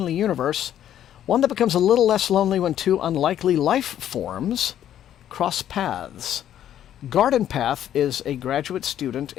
universe, one that becomes a little less lonely when two unlikely life forms cross paths. Garden Path is a graduate student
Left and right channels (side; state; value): right; quieter; 10.9 dB